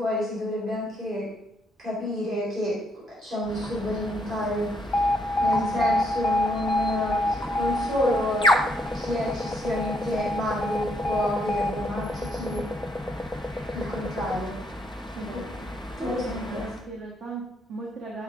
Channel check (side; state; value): both; normal; correlation 0.73